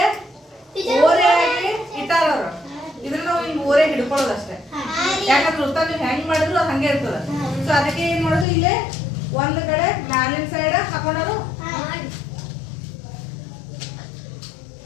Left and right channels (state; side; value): drops out; right; at 8.5 s